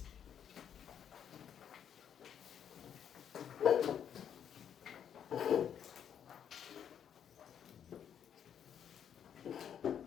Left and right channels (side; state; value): right; quieter; 8.8 dB